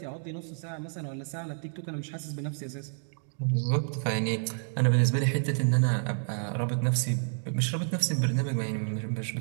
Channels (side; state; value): left; silent; digital silence